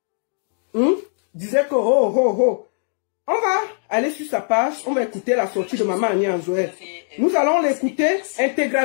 disait que on va aller sur sa page, on va écouter la sortie de Maman Annie Anzoé. Nous allons l'écouter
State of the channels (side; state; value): right; silent; digital silence